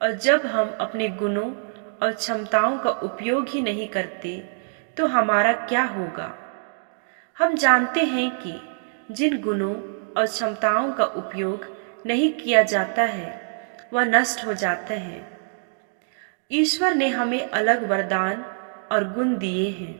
और जब हम अपने गुणों और क्षमताओं का उपयोग ही नहीं करते तो हमारा क्या होगा। हम जानते हैं कि जिन गुणों और क्षमताओं का उपयोग नहीं किया जाता है वह नष्ट हो जाते हैं। ईश्वर ने हमें अलग वरदान और गुण दिए हैं।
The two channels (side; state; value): left; silent; digital silence